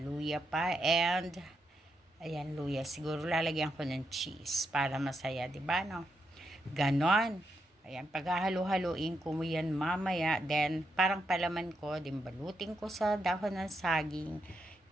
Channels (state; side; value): normal; both; correlation 0.82